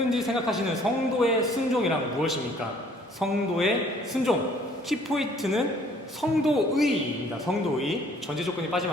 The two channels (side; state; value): both; normal; correlation 0.58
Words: 생각하시는 성도의 순종이란 무엇입니까? 성도의 순종. 키포인트는 성도의입니다. 성도의. 전제 조건이